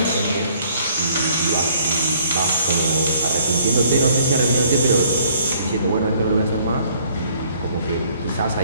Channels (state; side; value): inverted; both; correlation -0.62